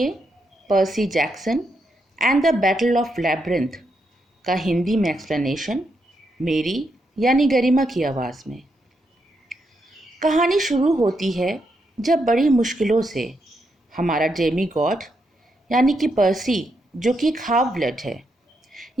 Percy Jackson and the battle of labyrinth का हिंदी में एक्सप्लेनेशन मेरी यानी गरिमा की आवाज़ में। कहानी शुरू होती है जब बड़ी मुश्किलों से हमारा डेमी गॉड यानी कि पर्सी, जो कि एक हाफ ब्लड है,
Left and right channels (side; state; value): both; normal; correlation 0.81